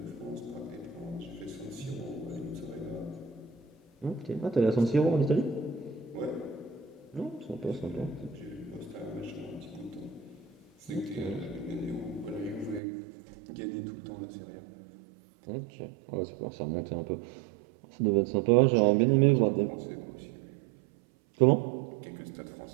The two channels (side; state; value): left; drops out; at 12.8 s